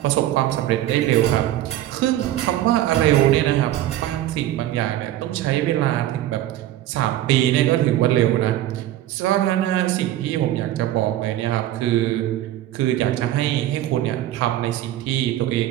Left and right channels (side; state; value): left; quieter; 13.5 dB